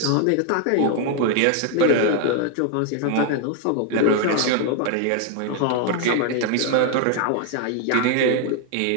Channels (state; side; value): different; both; correlation 0.01